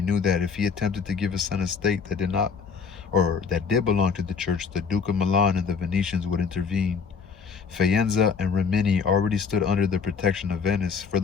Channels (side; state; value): right; quieter; 5.9 dB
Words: knew that if he attempted to give his son a state that did belong to the church, the Duke of Milan and the Venetians would intervene. Faenza and Rimini already stood under the protection of Venice.